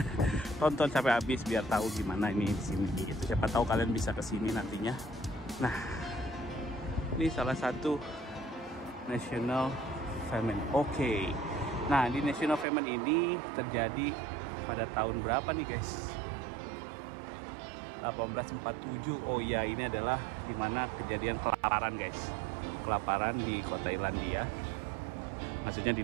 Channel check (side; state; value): left; drops out; at 12.7 s